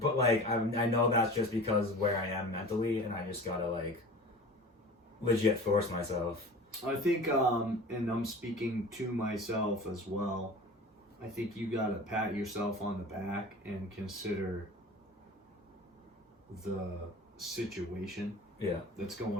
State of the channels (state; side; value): normal; both; correlation 0.38